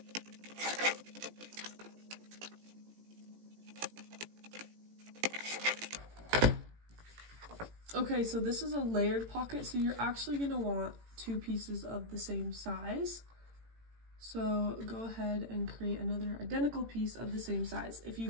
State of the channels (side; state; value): left; late; 18 ms